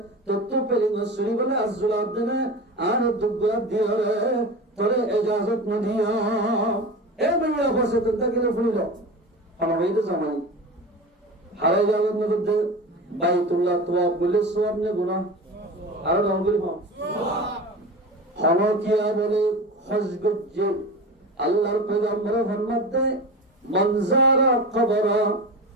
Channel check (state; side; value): normal; both; correlation 0.29